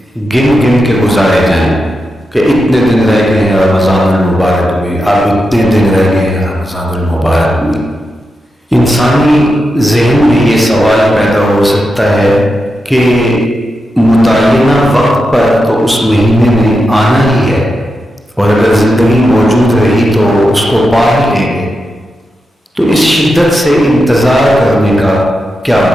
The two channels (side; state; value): both; normal; correlation 0.88